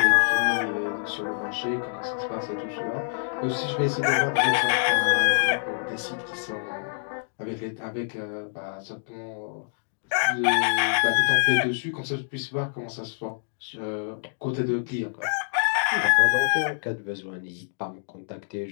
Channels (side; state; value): right; silent; digital silence